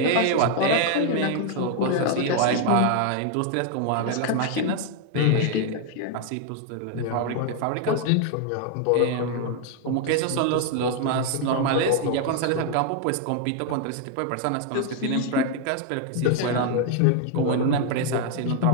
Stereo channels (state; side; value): different; both; correlation 0.00